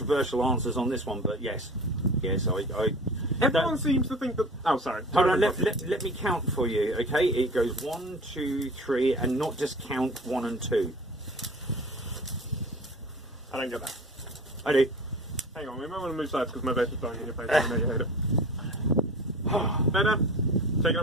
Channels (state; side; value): normal; both; correlation 0.39